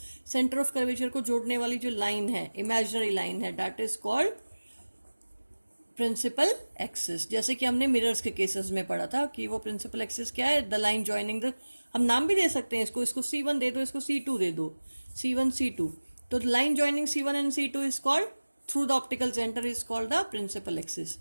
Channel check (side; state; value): both; inverted; correlation -1.00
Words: सेंटर ऑफ कर्वेचर को जोड़ने वाली जो लाइन है, इमेजिनरी लाइन है, that is called principal axis. जैसे कि हमने मिरर्स के केसेस में पढ़ा था कि वो प्रिंसिपल एक्सिस क्या है, द लाइन जॉइनिंग द, हम नाम भी दे सकते हैं इसको C1 दे दो, इसको C2 दे दो, C1 C2। तो line joining C1 and C2 is called through the optical centre is called the principal axis.